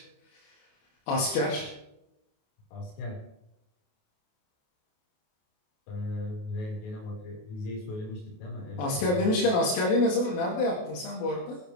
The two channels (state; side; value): late; right; 28 ms